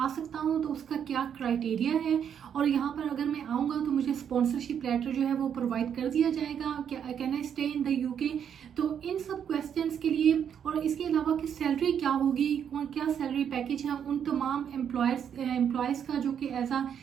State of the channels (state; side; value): quieter; left; 8.4 dB